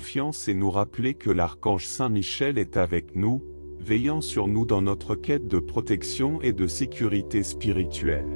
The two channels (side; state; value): both; inverted; correlation -1.00